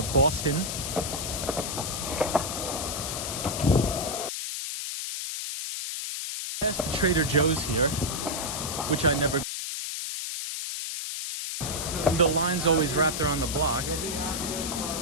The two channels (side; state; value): left; noise; hiss, 4 dB below the sound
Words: Boston. Past the Trader Joe's here, which I never. The line's always wrapped around the block.